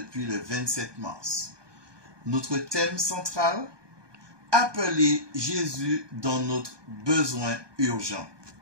le 27 mars. Notre thème central, appeler Jésus dans notre besoin urgent.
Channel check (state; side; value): late; left; 1.2 ms